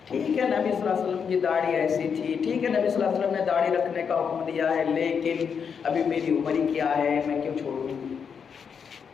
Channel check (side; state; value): right; quieter; 6.7 dB